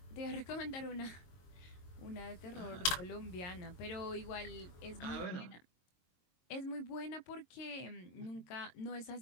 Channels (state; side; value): late; right; 22 ms